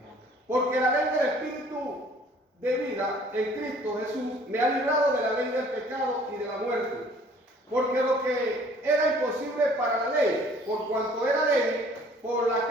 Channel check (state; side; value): normal; both; correlation 0.55